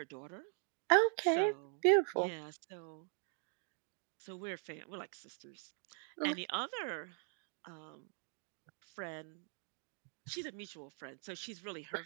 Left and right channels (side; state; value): left; silent; 50 dB below the other